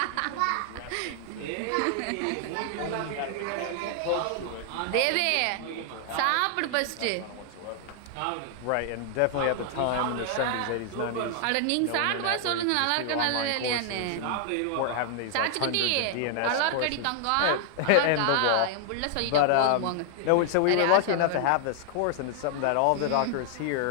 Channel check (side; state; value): both; different; correlation 0.00